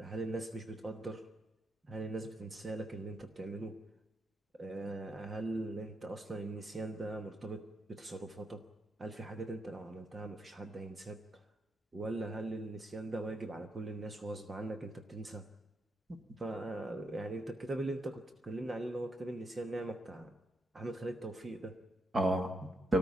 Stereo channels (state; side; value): normal; both; correlation 0.80